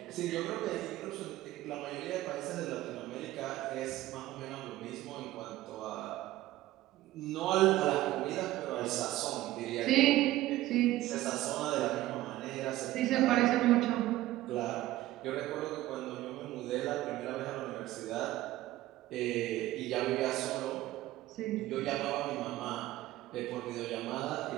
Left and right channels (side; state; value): left; quieter; 15.9 dB